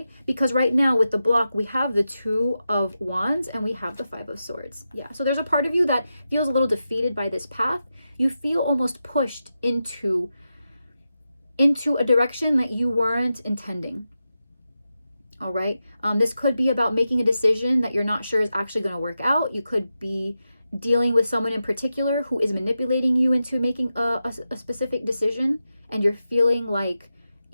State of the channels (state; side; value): inverted; both; correlation -0.90